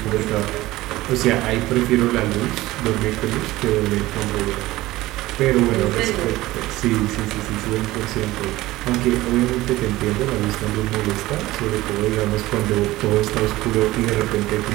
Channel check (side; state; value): left; quieter; 17.7 dB